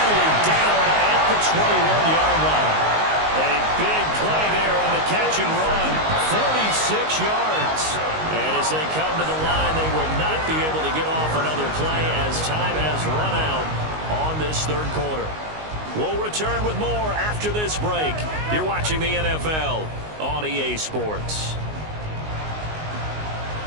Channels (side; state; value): left; late; 19 ms